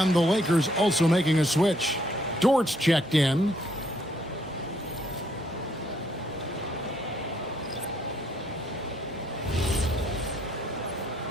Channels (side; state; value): both; normal; correlation 0.69